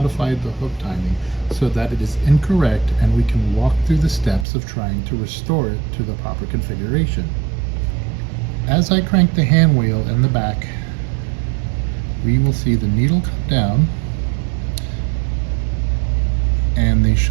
the hook timing so that it is incorrect and we can walk through the steps of trying to restore it to the proper configuration. As I crank the hand wheel in the back, we will see the needle come down and the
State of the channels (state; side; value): drops out; left; at 4.5 s